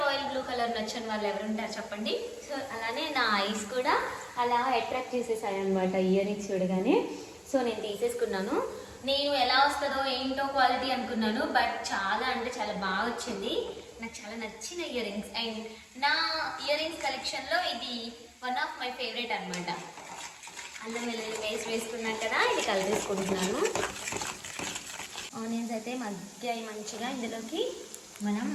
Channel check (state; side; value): identical; both; correlation 1.00